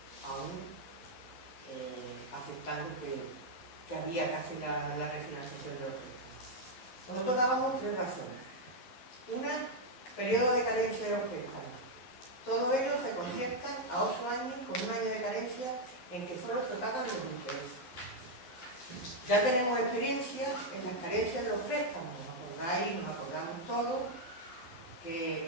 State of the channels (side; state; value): right; late; 12 ms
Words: aún, aceptando que había que hacer la refinanciación de los préstamos. Nosotros dábamos 3 razones. Una, periodo de carencia de los préstamos. Todos ellos se conciertan a 8 años con un año de carencia en que solo se pagan los intereses. Ya tenemos experiencia en las carencias de los préstamos, ¿os acordáis? Nos acordamos todos